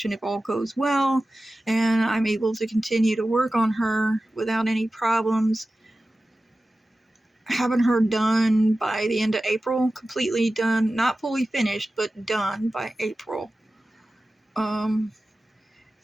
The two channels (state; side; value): normal; both; correlation 0.95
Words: if all goes well, and I'm able to continue to work on her without any problems, having her done by the end of April, completely done, not fully finished, but done by April.